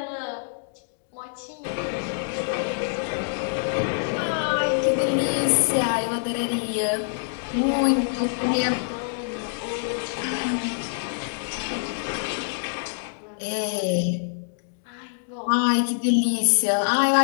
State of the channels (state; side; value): silent; right; digital silence